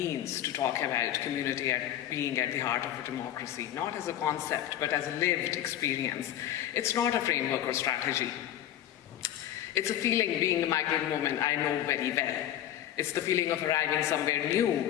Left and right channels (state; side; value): quieter; right; 11.7 dB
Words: to talk about community being at the heart of a democracy, not as a concept, but as a lived experience, it's not a framework or strategy. It's a feeling, being a migrant woman, I know very well. It's the feeling of arriving somewhere new